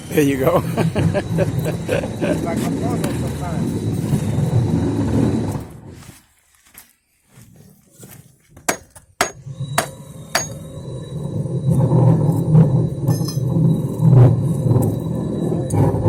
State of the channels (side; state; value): both; identical; correlation 1.00